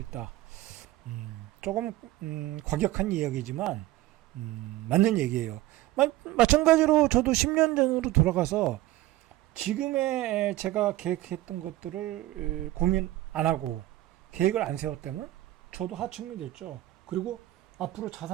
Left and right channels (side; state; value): left; quieter; 16.3 dB